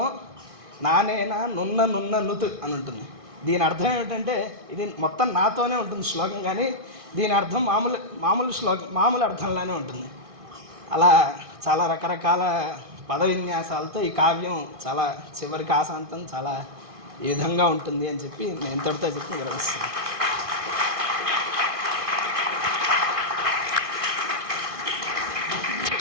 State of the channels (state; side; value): late; left; 1.6 ms